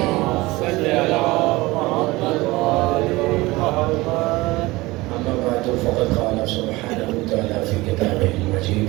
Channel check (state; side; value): quieter; left; 20.8 dB